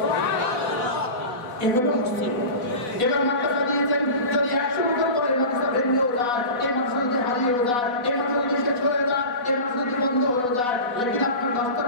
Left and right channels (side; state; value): right; late; 4.1 ms